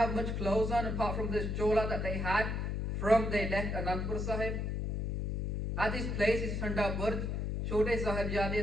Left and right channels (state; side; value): noise; left; hum, 1 dB below the sound